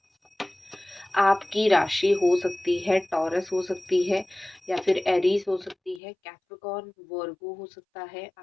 आपकी राशि हो सकती है टॉरस, हो सकती है या फिर एरीज हो सकती है, कैप्रिकॉर्न, वर्गो हो सकता है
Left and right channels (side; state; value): right; drops out; at 6.0 s